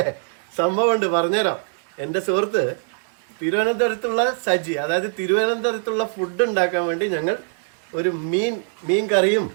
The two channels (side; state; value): left; silent; digital silence